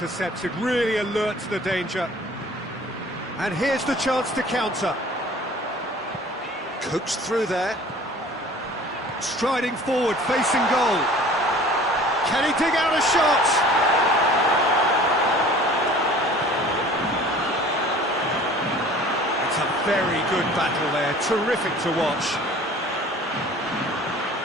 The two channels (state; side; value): normal; both; correlation 0.47